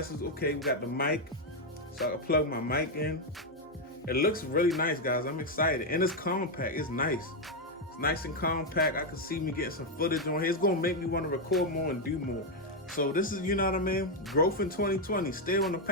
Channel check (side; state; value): both; normal; correlation 0.02